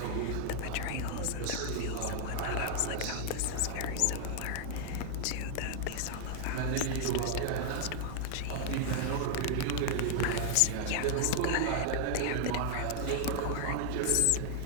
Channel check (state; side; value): different; both; correlation 0.00